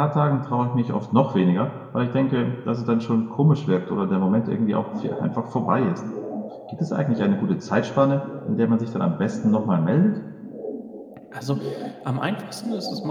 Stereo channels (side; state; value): both; identical; correlation 1.00